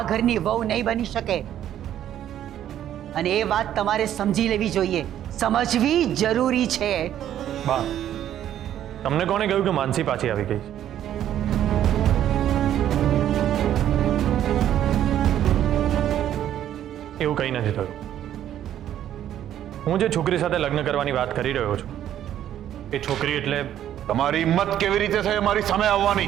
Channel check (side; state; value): left; quieter; 11.2 dB